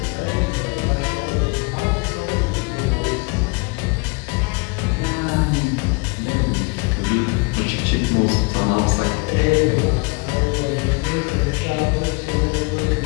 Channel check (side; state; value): right; quieter; 28.9 dB